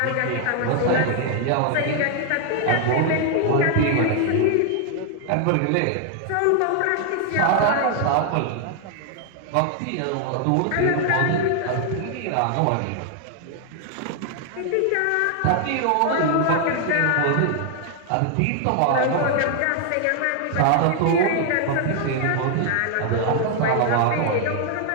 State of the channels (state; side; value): different; both; correlation 0.00